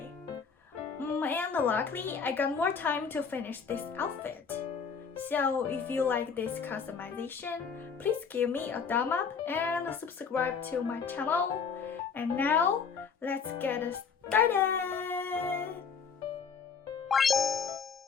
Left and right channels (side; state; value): right; quieter; 6.0 dB